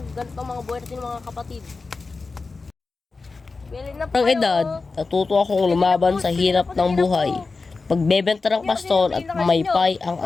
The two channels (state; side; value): quieter; right; 4.1 dB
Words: ganito mga buhay natin mga kapatid. Ang edad, natuto akong lumaban sa hirap ng buhay. Pagbebenta ng paston at maypay ang